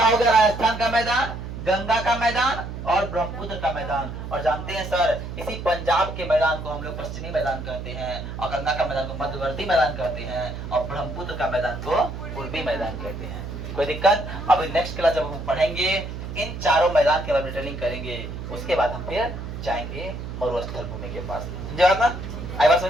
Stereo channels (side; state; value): right; noise; hum, 8 dB below the sound